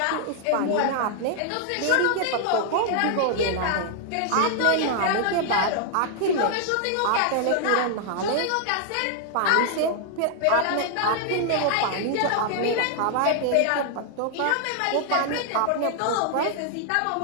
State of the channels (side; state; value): both; different; correlation 0.00